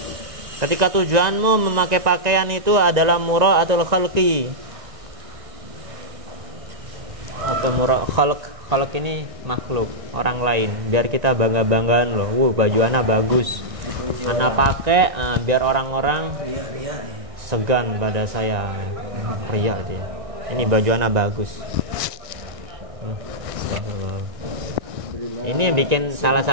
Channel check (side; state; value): left; late; 1.6 ms